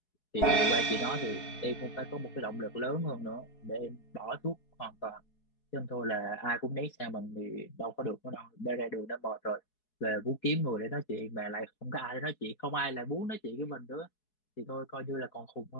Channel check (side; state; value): right; late; 4.7 ms